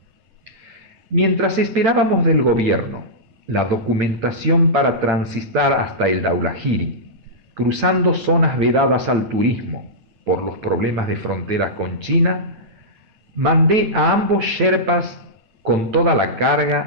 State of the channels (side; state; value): left; late; 9.0 ms